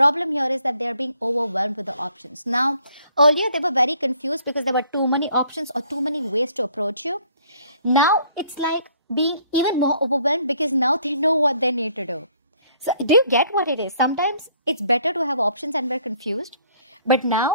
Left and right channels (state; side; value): inverted; both; correlation -0.62